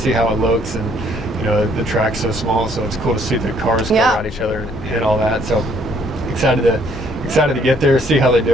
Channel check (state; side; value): normal; both; correlation 0.65